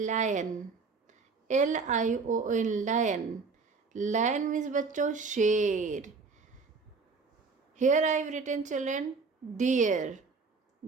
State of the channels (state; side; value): quieter; left; 4.6 dB